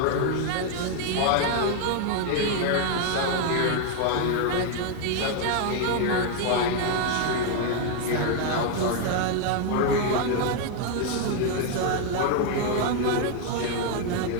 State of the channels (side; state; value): both; different; correlation 0.01